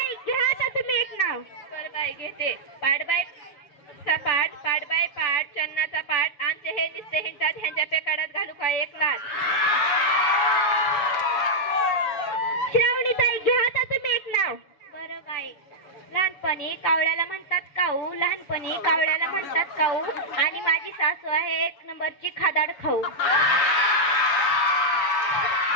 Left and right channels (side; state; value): right; late; 7.0 ms